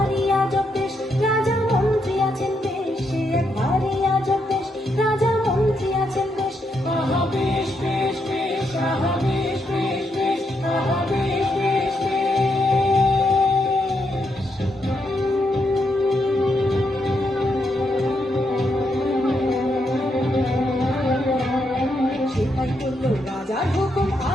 আজব দেশ, রাজা মন্ত্রী আছেন বেশ, সে এক ভারী আজব দেশ, রাজা মন্ত্রী আছেন বেশ। আহা বেশ বেশ বেশ, আহা বেশ বেশ বেশ, আহা বেশ বেশ বেশ। সেটাই করলো রাজার হুকুম,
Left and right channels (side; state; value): both; normal; correlation 0.79